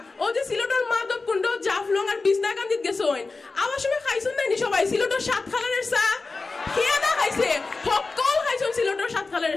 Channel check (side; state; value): right; quieter; 3.8 dB